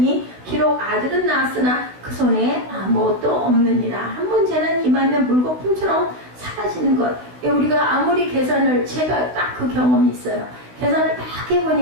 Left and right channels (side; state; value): left; late; 16 ms